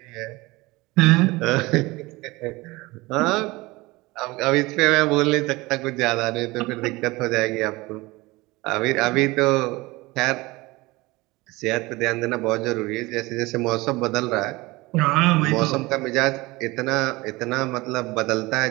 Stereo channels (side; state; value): left; quieter; 21.8 dB